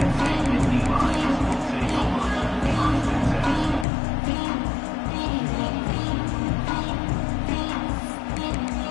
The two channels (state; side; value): drops out; right; at 3.9 s